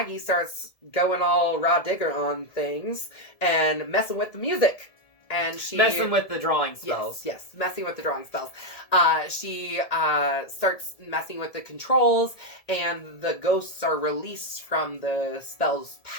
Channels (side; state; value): right; late; 1.7 ms